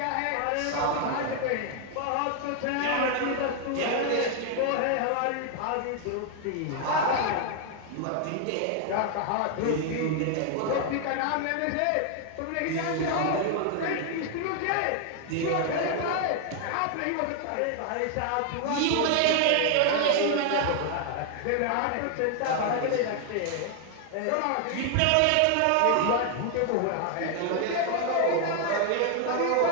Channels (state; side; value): different; both; correlation 0.00